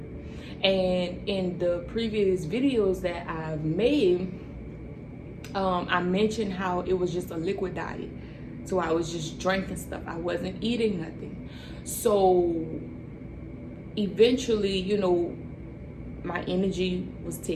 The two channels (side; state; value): both; identical; correlation 1.00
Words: And in the previous videos that I've made, I mentioned how it was just a liquid diet. So I was just drinking stuff. I wasn't eating nothing. So eventually, my energy was